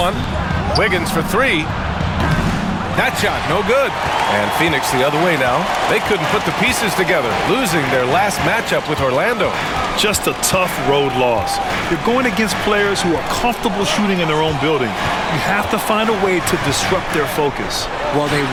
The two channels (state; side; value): identical; both; correlation 1.00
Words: Wiggins for 3. That shot, no good. And Phoenix the other way now. They couldn't put the pieces together, losing their last matchup with Orlando. Just a tough road loss. You're going against players who are comfortable shooting in their own building. You have to find a way to disrupt their focus. Well, they